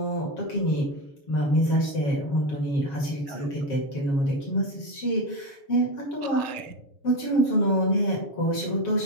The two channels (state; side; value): late; right; 7.3 ms